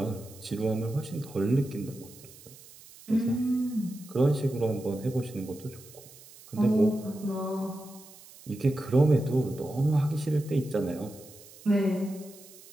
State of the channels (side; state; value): right; noise; hiss, 21 dB below the sound